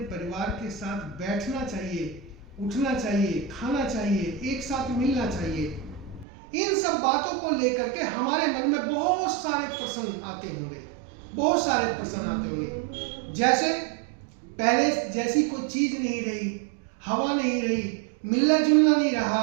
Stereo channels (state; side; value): drops out; left; at 6.2 s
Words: परिवार के साथ बैठना चाहिए, उठना चाहिए, खाना चाहिए, एक साथ मिलना चाहिए। इन सब बातों को लेकर के हमारे मन में बहुत सारे प्रश्न आते होंगे, बहुत सारे प्रश्न आते होंगे। जैसे पहले जैसी कोई चीज नहीं रही, हवा नहीं रही, मिलना जुलना नहीं